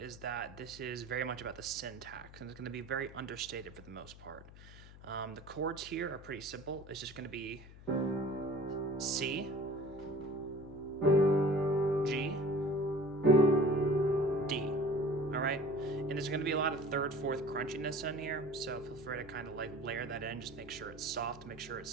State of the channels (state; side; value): noise; left; hum, 18 dB below the sound